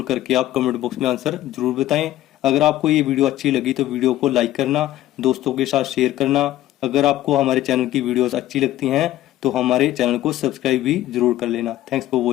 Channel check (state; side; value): quieter; right; 14.4 dB